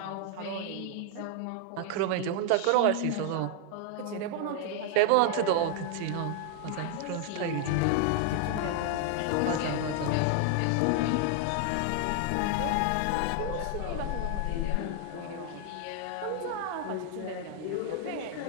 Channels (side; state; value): both; different; correlation 0.00